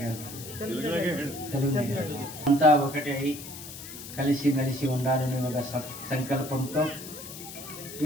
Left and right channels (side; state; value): left; noise; hiss, 12 dB below the sound